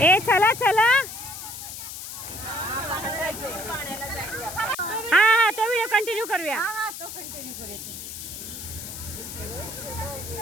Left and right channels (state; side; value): noise; left; hiss, 9 dB below the sound